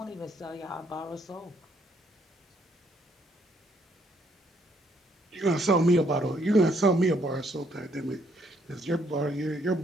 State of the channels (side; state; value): both; normal; correlation 0.69